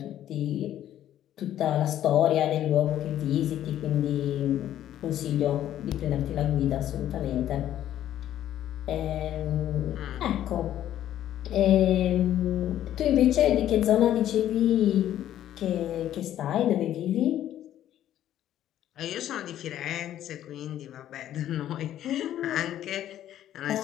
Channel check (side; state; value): right; quieter; 11.9 dB